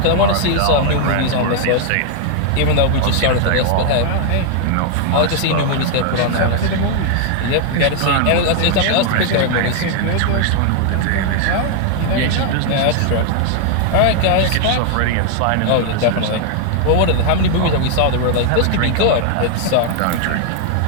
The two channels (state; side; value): different; both; correlation 0.00